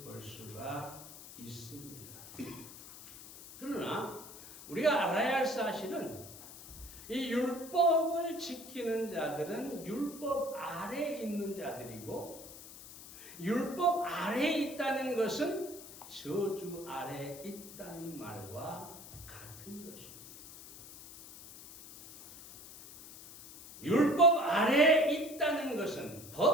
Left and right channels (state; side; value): noise; left; hiss, 15 dB below the sound